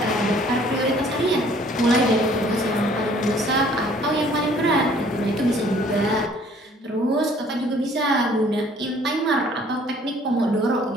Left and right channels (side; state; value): both; normal; correlation 0.57